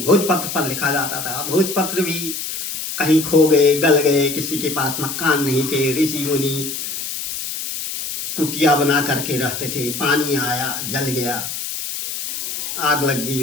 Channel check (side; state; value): left; noise; hiss, 5 dB below the sound